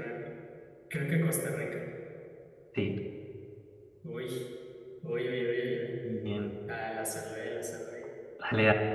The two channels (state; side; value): identical; both; correlation 1.00